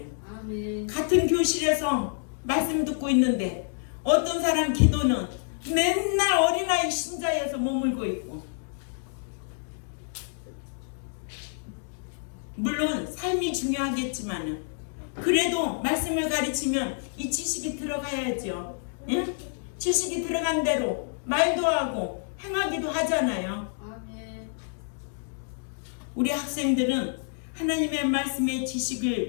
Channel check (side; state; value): right; silent; digital silence